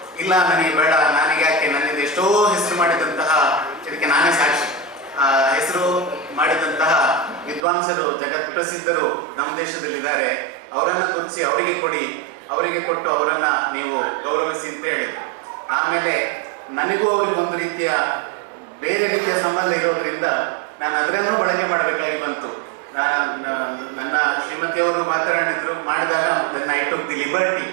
ಇಲ್ಲ, ನನಗೆ ಬೇಡ, ನನಗೆ ಯಾಕೆ, ನನ್ನಿಂದ ಎಷ್ಟೋ ಹೆಸರು ಮಾಡಿದಂತಹ ಇದಕ್ಕೆ ನಾನೇ ಸಾಕ್ಷಿ. ಹೆಸರು ಮಾಡಿದಂತಹ ವಿದ್ವಾಂಸರು, ಜಗತ್ ಪ್ರಸಿದ್ಧರು ನಮ್ಮ ದೇಶದಲ್ಲಿದ್ದಾರೆ. ಅವರನ್ನು ಗುರುತಿಸಿ ಅವರಿಗೆ ಕೊಟ್ಟು ಅವರನ್ನ ನೀವು ಗೌರವಿಸಿ ಅಂತ ಹೇಳಿದ್ರು. ಆಮೇಲೆ ನನಗೂ ಅವ್ರಿಗೆ ಒಂದು ರೀತಿಯ ಬೇರೆ ರೀತಿಯ ಸಂಬಂಧ ಇರೋದ್ರಿಂದ ನಾನು ಅದರನ್ನು ಬಳಕೆ ಮಾಡಬೇಕಾಗಿ ಬಂತು. ನನ್ನ ಶ್ರೀಮತಿಯವರು ಮಾಡಿದಾಗ ನನ್ನ ಐ ಟುಕ್ ದಿ ಲಿಬರ್ಟಿ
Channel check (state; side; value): drops out; left; at 7.7 s